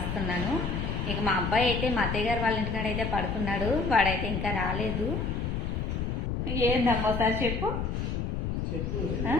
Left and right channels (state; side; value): noise; left; rumble, 1 dB below the sound